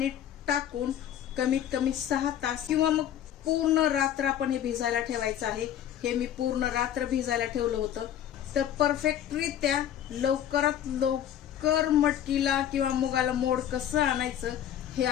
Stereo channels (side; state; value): right; quieter; 10.5 dB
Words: टाकून कमीत कमी 6 तास किंवा मग पूर्ण रात्र आपण हे भिजायला ठेवायचं आहे. हे मी पूर्ण रात्र भिजायला ठेवलं होतं. तर परफेक्टरित्या लवकरात लवकर मटकीला किंवा मुगाला मोड कसं आणायचं हे